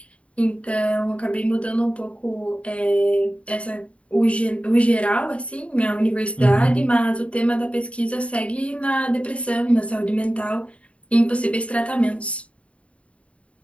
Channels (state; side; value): late; right; 0.063 ms